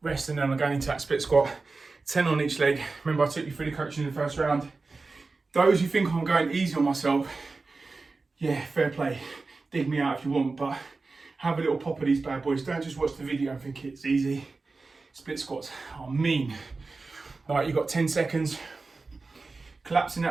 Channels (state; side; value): quieter; left; 3.8 dB